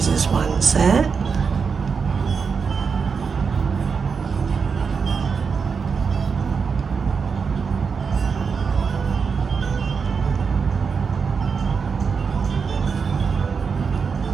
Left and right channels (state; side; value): quieter; left; 5.6 dB